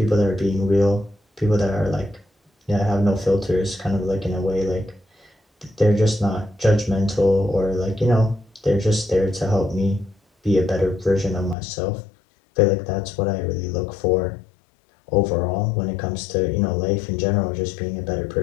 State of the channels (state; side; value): drops out; right; at 11.6 s